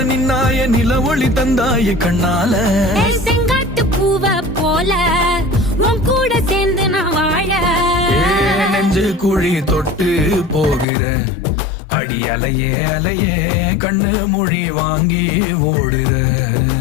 நின்னாய நில ஒளி தந்தாய கண்ணால. செங்காட்டு பூவ போல உன் கூட சேர்ந்து நான் வாழ. நெஞ்சு குழி தொட்டு போகிற அடி அலையே அலையே கண்ணு மொழி வாங்கி ஓடுற.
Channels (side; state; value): right; drops out; at 10.9 s